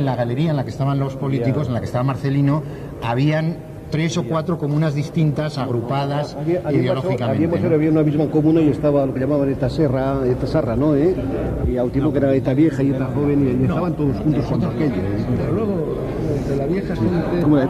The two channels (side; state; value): both; identical; correlation 1.00